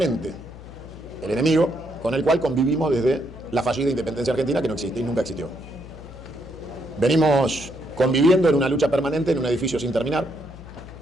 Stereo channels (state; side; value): noise; left; hum, 16 dB below the sound